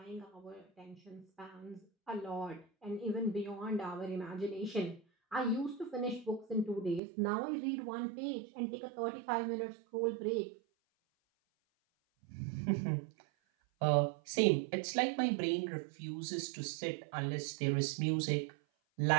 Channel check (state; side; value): drops out; left; at 7.0 s